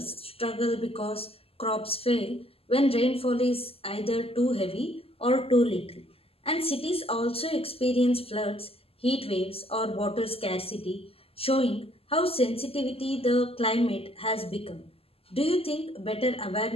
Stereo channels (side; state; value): right; late; 0.28 ms